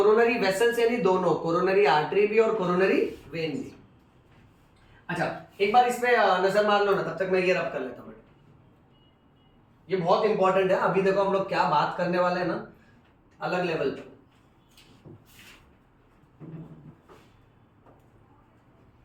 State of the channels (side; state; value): both; identical; correlation 1.00